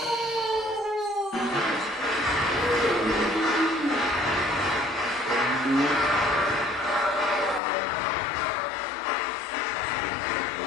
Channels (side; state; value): right; drops out; at 7.6 s